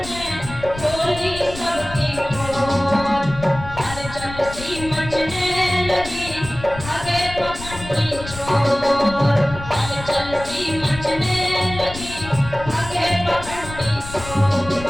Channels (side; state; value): left; noise; rumble, 12 dB below the sound